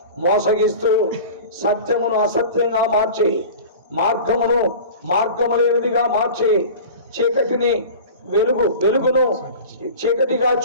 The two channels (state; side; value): inverted; both; correlation -0.36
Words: మోసగిస్తూ సత్యమును అసత్యంగా మార్చి, మార్గము లేనిదిగా మార్చి, చీకటిని వెలుగును చీకటిగా